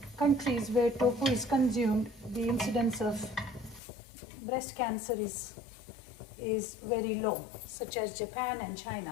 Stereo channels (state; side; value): drops out; right; at 3.8 s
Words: countries where tofu is consumed, the incidence of breast cancer is very low, such as Japan and